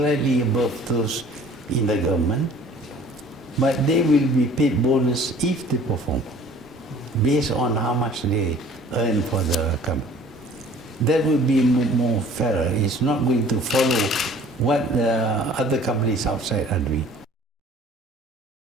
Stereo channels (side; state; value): both; normal; correlation 0.50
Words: above those in the government, but they will be paid bonus if they perform, based on how much they earn for the company. that would be more fairer. It's not going to follow what other companies outside are doing.